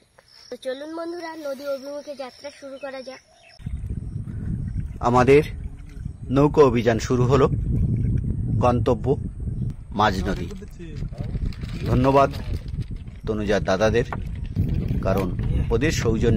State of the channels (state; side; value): identical; both; correlation 1.00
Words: তো চলুন বন্ধুরা, নদী অভিমুখে যাত্রা শুরু করা যাক। আমাদের নৌকো অভিযান শুরু হলো, গন্তব্য মাঝ নদী। ধন্যবাদ তনুজার দাদাদের, কারণ ওদের